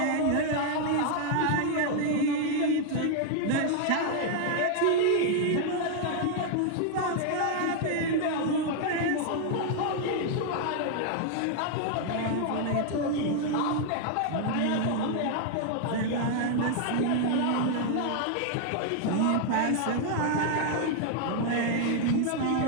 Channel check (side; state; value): both; different; correlation 0.00